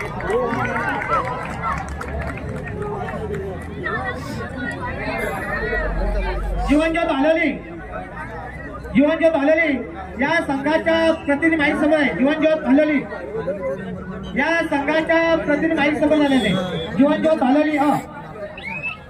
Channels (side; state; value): both; identical; correlation 1.00